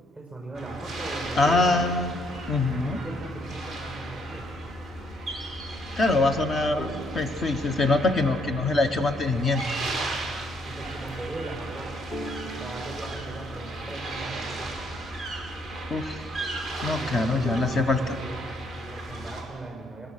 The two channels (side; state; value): both; normal; correlation 0.70